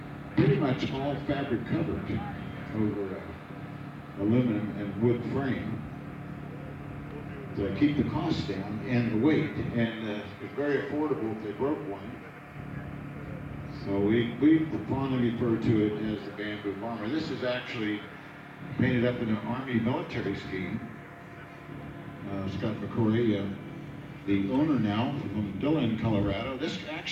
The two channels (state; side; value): identical; both; correlation 1.00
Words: pretty much all fabric covered over aluminum and wood frame to keep the cost down and the weight, and it's very affordable if they broke one. So we fondly refer to it as the Bamboo Bomber. This is actually painted up in an Army military scheme. Scott McCoy, the owner now from Dillon, Colorado. This